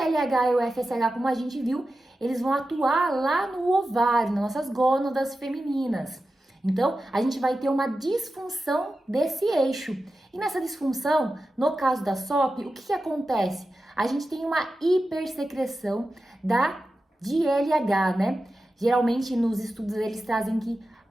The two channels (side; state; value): both; normal; correlation 0.92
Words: e o FSH, como a gente viu, eles vão atuar lá no ovário, nas nossas gônadas femininas. Então, a gente vai ter uma disfunção desse eixo. E nessa disfunção, no caso da SOP, o que acontece? A gente tem uma hipersecreção de LH, né? Geralmente, nos estudos, eles trazem que